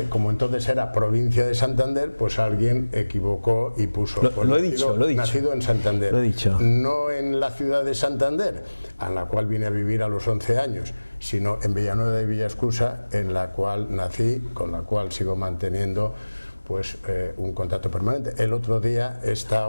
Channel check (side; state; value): both; inverted; correlation -1.00